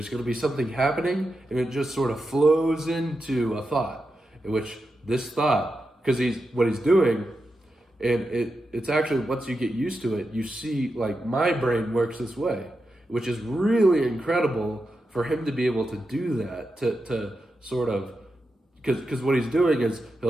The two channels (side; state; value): both; normal; correlation 0.89